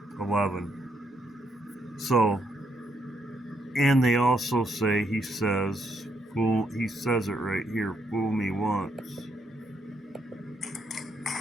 So, and they also say, he says it right here, fool me once.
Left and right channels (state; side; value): normal; both; correlation 0.75